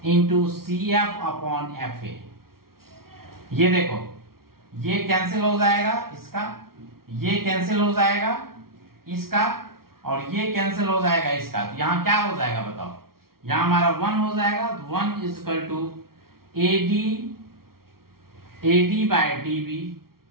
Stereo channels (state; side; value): late; left; 0.93 ms